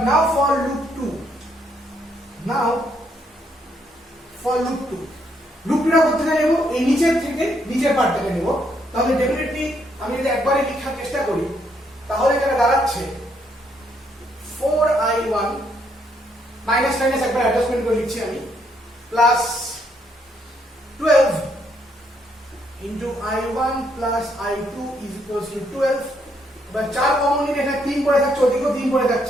now for loop 2, now for loop 2 টা করতে গেলে নেব এই নিচের থেকে নিচের পার্টটাকে নেব, তাহলে ডেফিনেটলি আমি যদি একবারে লেখার চেষ্টা করি তাহলে এটা দাঁড়াচ্ছে 4I1 মাইনাস মাইনাস একবার অ্যাডজাস্টমেন্ট করে লিখছি আমি, plus 12 into I1 plus I2 is equals to 12। এবার 4 কমন নিলে এখানে 3 পড়ে থাকছে, ওদিকেও 3 পড়ে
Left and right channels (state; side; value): normal; both; correlation 0.73